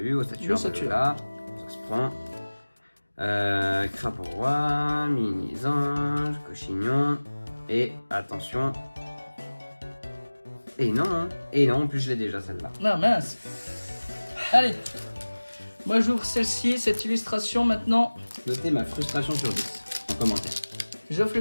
Ossature, là. Ça se prend. Crapaud Roi, Mini-Ange, Cochignon. Et attention. Et non, en plus je l'ai déjà celle-là. Non, mince. Allez. Moi j'ouvre celle-ci, cette illustration maintenant. Notez ma frustration sur 10 en commentaire. J'offre le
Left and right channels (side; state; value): both; inverted; correlation -1.00